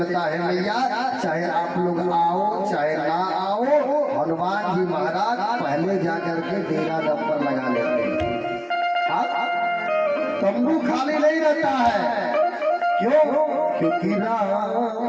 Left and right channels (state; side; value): identical; both; correlation 1.00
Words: है भैया, चाहे आप लोग आओ चाहे ना आओ, हनुमान जी महाराज पहले जाकर के डेरा डब्बर लगा लेते हैं। तंबू खाली नहीं रहता है, क्यों? क्योंकि